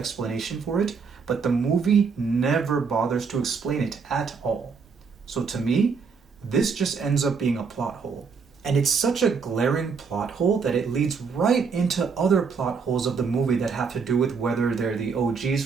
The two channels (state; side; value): quieter; left; 5.5 dB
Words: for it, but the movie never bothers to explain it at all. So to me, this just ends up being a plot hole. And it's such a glaring plot hole that it leads right into other plot holes of the movie that have to do with whether they're the OGs